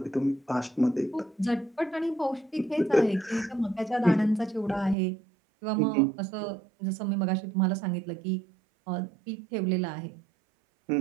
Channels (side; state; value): left; drops out; at 5.0 s